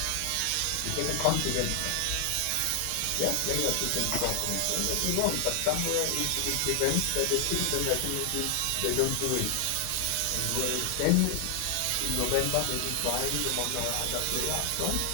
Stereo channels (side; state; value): both; different; correlation 0.00